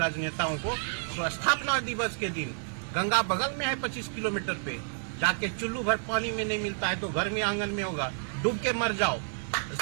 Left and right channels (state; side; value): silent; left; digital silence